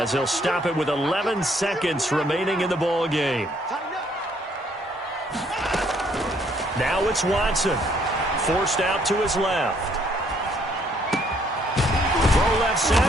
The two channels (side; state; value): both; normal; correlation 0.66